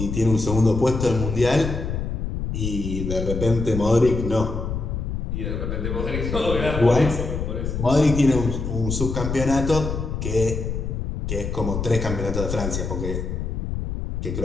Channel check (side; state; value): left; noise; rumble, 3 dB below the sound